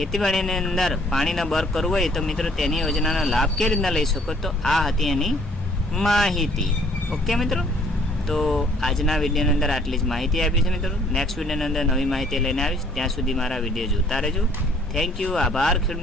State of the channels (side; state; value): both; normal; correlation 0.60